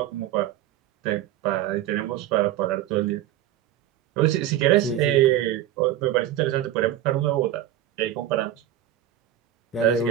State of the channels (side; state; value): left; quieter; 12.2 dB